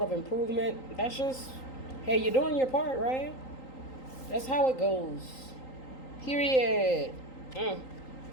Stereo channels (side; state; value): right; late; 3.8 ms